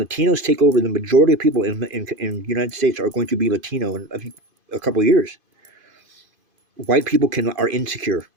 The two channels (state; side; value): late; left; 2.5 ms